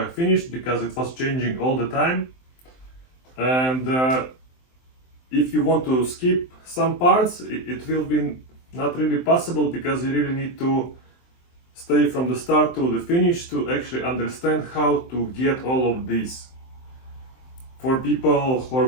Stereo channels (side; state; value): right; late; 23 ms